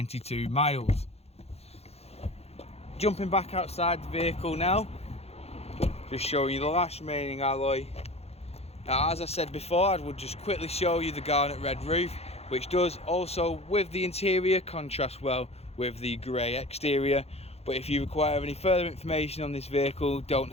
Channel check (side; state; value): right; late; 0.30 ms